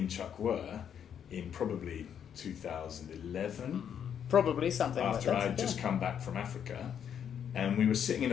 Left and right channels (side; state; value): right; quieter; 8.6 dB